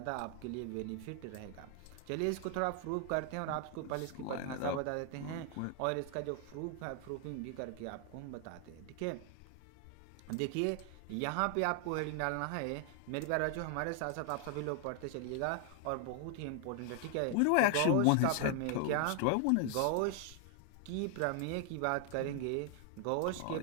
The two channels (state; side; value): different; both; correlation 0.00